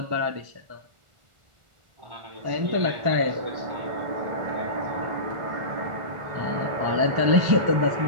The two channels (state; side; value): late; left; 1.4 ms